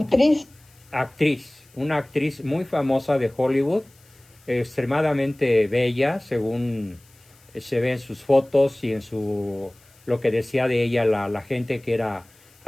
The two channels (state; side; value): noise; left; hiss, 30 dB below the sound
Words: una actriz muy famosa de Hollywood, extremadamente bella, según se ve en sus fotos y en lo que decía de ella la gente que era